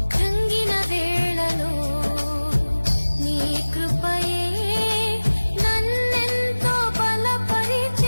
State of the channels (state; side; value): inverted; both; correlation -1.00